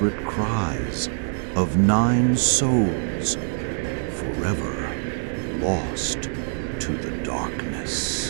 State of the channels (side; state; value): left; silent; 62 dB below the other